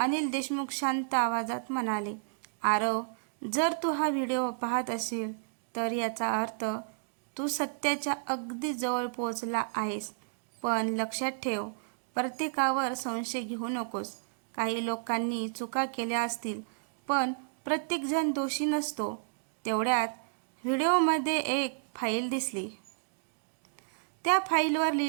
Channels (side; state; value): left; silent; digital silence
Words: देशमुख शांत आवाजात म्हणाले, आरव, जर तू हा व्हिडिओ पाहत असेल तर याचा अर्थ तू सत्याच्या अगदी जवळ पोहोचला आहेस. पण लक्षात ठेव, प्रत्येकावर संशय घेऊ नकोस. काही लोकांनी चुका केल्या असतील, पण प्रत्येकजण दोषी नसतो. तेवढ्यात व्हिडिओमध्ये एक फाईल दिसली. त्या फाईलवर